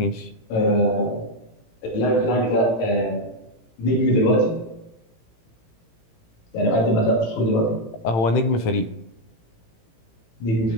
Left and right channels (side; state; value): right; late; 18 ms